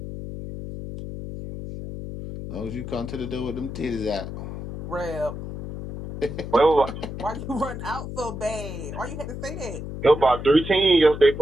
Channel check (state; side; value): noise; left; hum, 8 dB below the sound